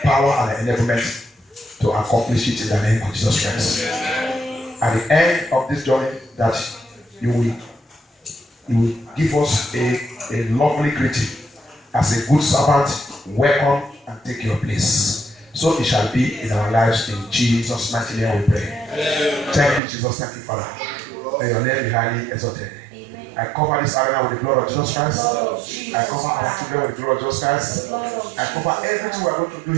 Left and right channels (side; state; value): left; drops out; at 19.8 s